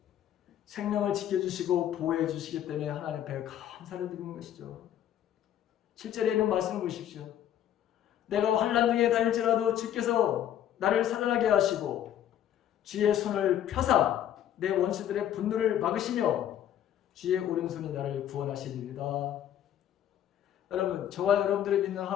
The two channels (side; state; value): right; quieter; 10.8 dB